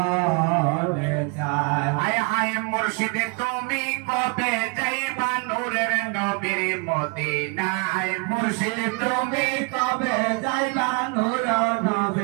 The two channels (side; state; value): left; quieter; 33.4 dB